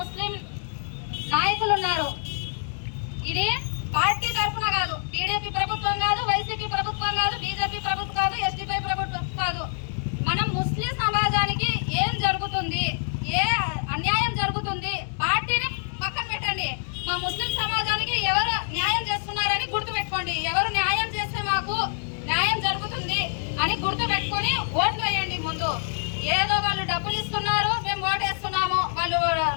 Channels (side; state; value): right; silent; digital silence